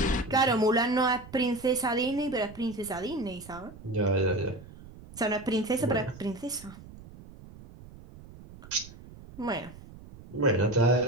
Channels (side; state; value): right; noise; rumble, 18 dB below the sound